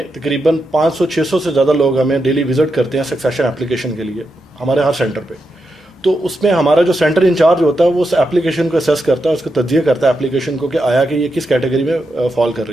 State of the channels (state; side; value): normal; both; correlation 0.86